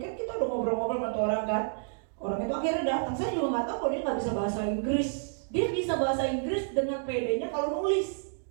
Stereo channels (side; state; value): left; silent; digital silence